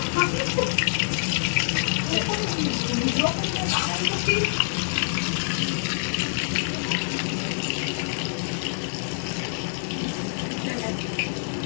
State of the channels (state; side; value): silent; right; digital silence